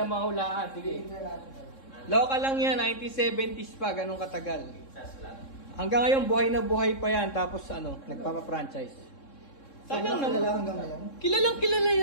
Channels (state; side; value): late; right; 3.7 ms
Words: mahulaan. Sige. Local lang yan, 1970s pa, ganun katagal. Hanggang ngayon, buhay na buhay pa yan. Tapos ano, nagpapa-franchise. Sayang naman. Kilalang kilala